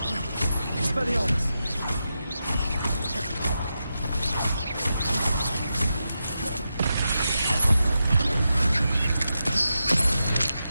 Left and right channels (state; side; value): inverted; both; correlation -0.88